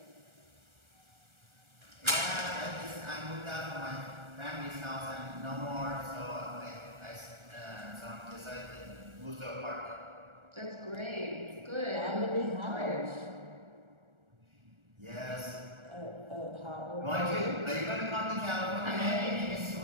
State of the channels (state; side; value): late; left; 1.4 ms